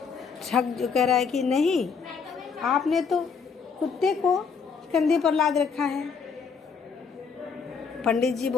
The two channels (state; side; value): quieter; right; 5.8 dB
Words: ठग जो कह रहा है कि नहीं, आपने तो कुत्ते को कंधे पर लाद रखा है। पंडित जी